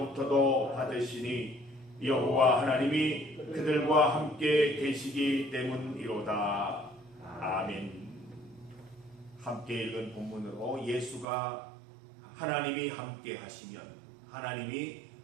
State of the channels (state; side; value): drops out; left; at 11.2 s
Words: 받으시니 여호와 하나님이 그들과 함께 계시기 때문이로다. 아멘. 함께 읽은 본문으로 예수가 하나님이 함께